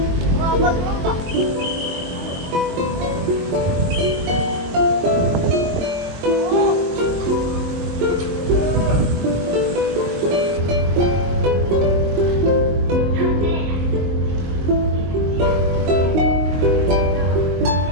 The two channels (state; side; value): late; left; 22 ms